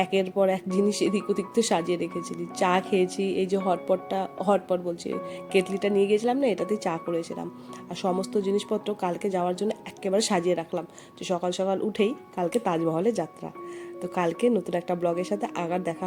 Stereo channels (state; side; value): identical; both; correlation 1.00